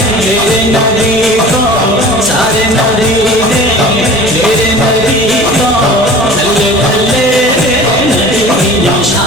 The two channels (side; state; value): both; normal; correlation 0.41